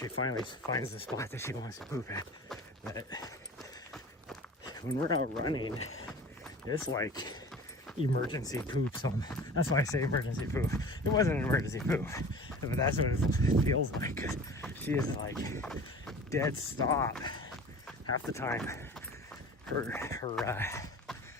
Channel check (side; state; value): both; normal; correlation 0.40